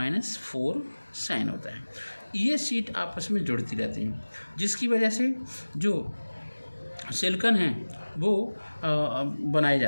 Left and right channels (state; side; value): inverted; both; correlation -1.00